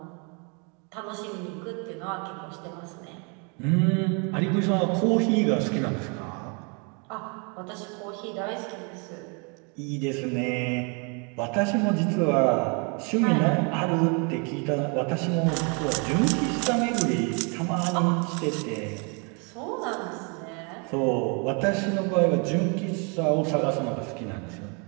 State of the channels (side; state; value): left; quieter; 34.5 dB